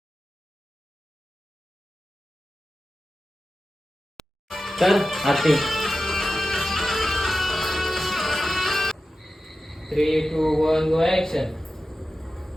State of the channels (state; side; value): normal; both; correlation 0.93